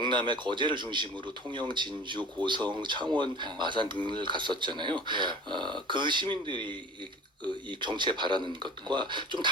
거제를 중심으로 통영, 진주, 고성, 창원, 마산 등을 갔었잖아요. 그 시민들이 이 정치에 바라는 것과 좀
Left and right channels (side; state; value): both; normal; correlation 0.40